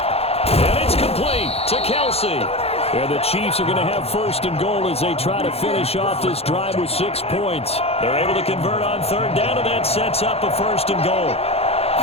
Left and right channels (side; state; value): right; late; 0.29 ms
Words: And it's complete to Kelce. And the Chiefs are going to have 1st and goal as they try to finish off this drive with 6 points. They're able to convert on 3rd down, and that sets up a 1st and goal.